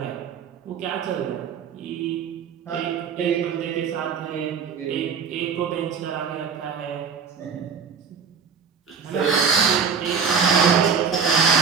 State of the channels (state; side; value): quieter; left; 6.2 dB